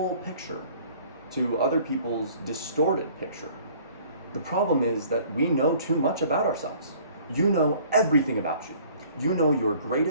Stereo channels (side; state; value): both; inverted; correlation -0.53